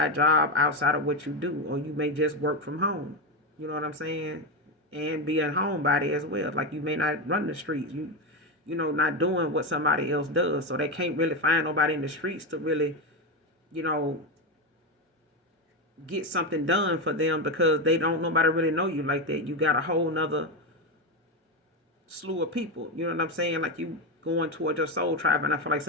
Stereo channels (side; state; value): both; normal; correlation 0.12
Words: job outside of what you do, or you may just work from home. You know what I'm saying? And be a homebody as well. Like you may not run the streets. Not doing what somebody else does. So they can't really find nobody in the streets to really, get something done for them because nobody really know you like that. You got a whole nother slew of people. You know what I'm saying? Like you going towards your soul tribe, and I feel like